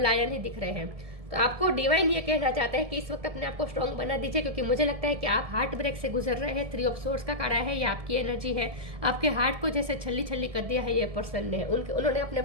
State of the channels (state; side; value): late; left; 1.7 ms